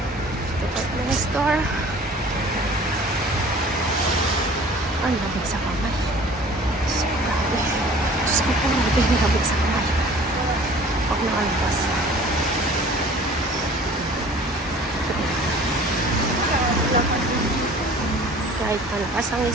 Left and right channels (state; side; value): normal; both; correlation 0.48